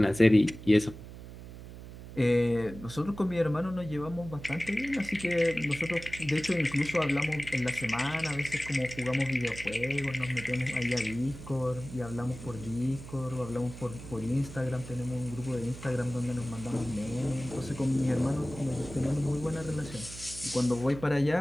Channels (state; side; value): noise; right; hum, 14 dB below the sound